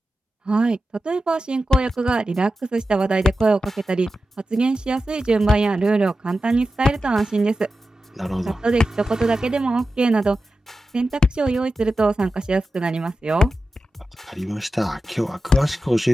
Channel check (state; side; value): normal; both; correlation 0.92